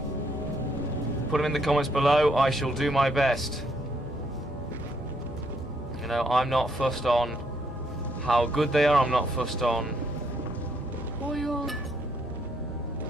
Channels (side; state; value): both; normal; correlation 0.72